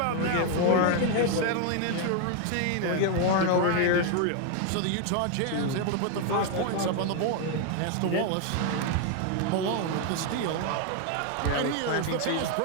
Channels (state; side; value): different; both; correlation 0.00